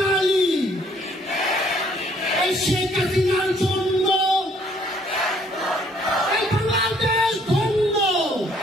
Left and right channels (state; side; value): normal; both; correlation 0.63